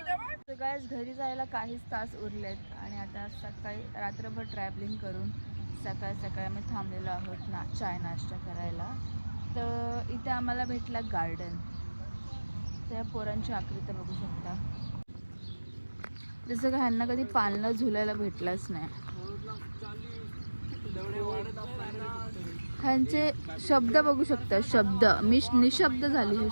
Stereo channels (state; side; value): inverted; both; correlation -1.00